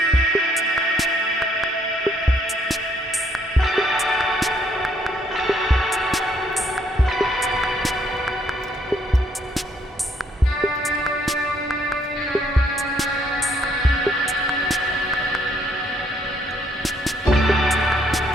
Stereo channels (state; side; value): normal; both; correlation 0.69